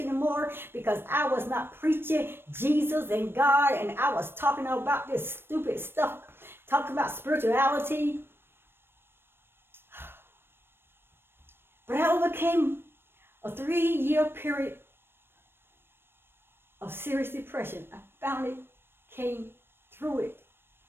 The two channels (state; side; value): late; left; 0.11 ms